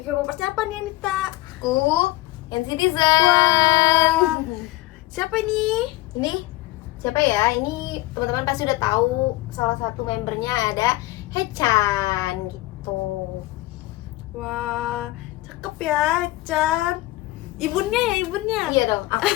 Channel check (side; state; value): right; quieter; 18.6 dB